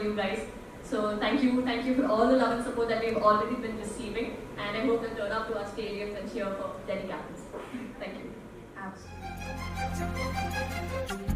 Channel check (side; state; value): both; identical; correlation 1.00